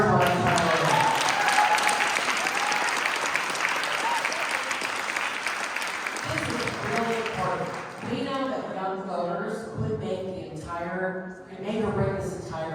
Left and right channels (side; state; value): both; identical; correlation 1.00